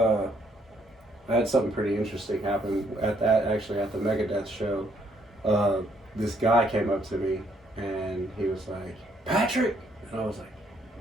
had something pretty interesting happen at the Megadeth show. This guy came up to me and he was like, "Patrick," and I was like,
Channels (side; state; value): both; normal; correlation 0.69